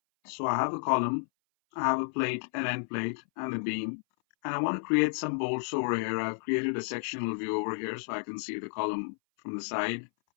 So I have a column, I have a plate, an end plate, and a beam, and I want to create some bolts over here. I've created a sectional view over here so I can see the column from the side,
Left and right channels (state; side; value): silent; right; 57 dB below the other